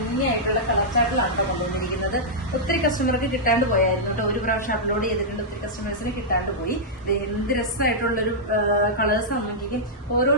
കളർ ചാർട്ടിലാണ് കൊണ്ടുവന്നിരിക്കുന്നത്. ഒത്തിരി കസ്റ്റമർക്ക് കിട്ടാണ്ട് പോയായിരുന്നു കേട്ടോ. ഒരു പ്രാവശ്യം അപ്ലോഡ് ചെയ്തിട്ടുണ്ട്, ഒത്തിരി കസ്റ്റമേഴ്സിന് കിട്ടാണ്ട് പോയി. എന്ത് രസമായിട്ടുള്ളൊരു കളേഴ്സ് നോക്കിക്കും. ഓരോ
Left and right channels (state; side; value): normal; both; correlation -0.09